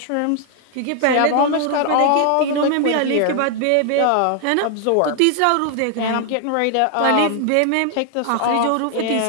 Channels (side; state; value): both; different; correlation 0.00